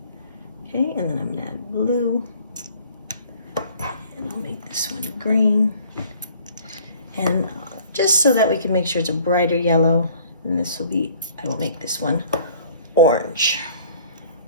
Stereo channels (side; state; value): both; inverted; correlation -0.53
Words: Okay, and then I'm going to add blue, and I'll make this one green. And just so that we can make sure it's a brighter yellow, and I will make this one orange.